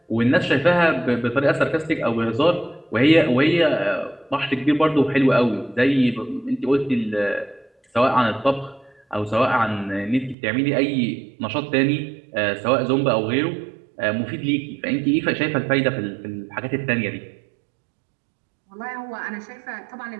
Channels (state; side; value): drops out; left; at 10.4 s